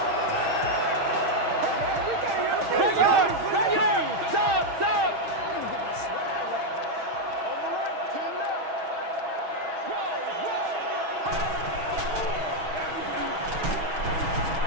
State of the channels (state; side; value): late; left; 6.4 ms